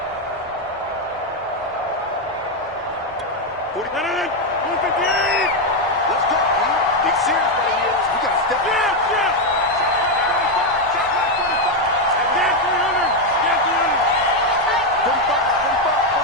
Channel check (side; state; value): both; normal; correlation 0.05